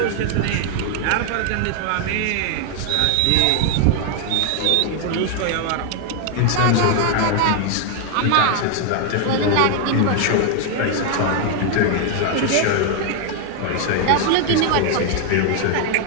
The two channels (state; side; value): different; both; correlation 0.00